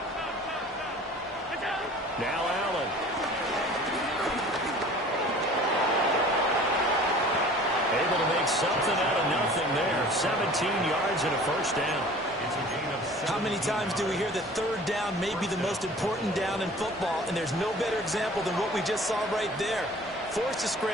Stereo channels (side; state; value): both; normal; correlation 0.46